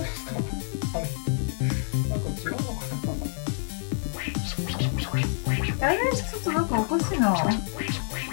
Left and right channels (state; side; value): silent; right; 60 dB below the other